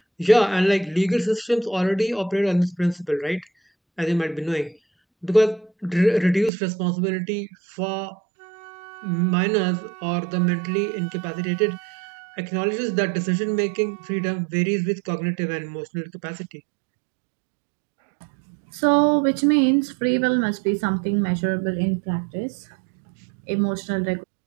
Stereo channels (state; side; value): drops out; left; at 6.5 s